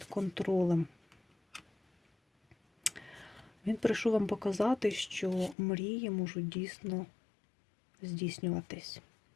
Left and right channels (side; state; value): right; drops out; at 5.6 s